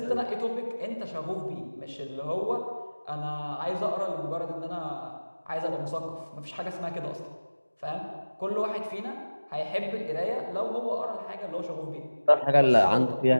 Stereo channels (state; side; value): inverted; both; correlation -1.00